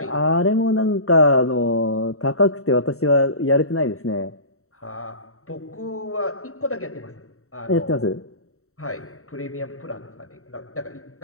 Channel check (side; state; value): right; late; 0.64 ms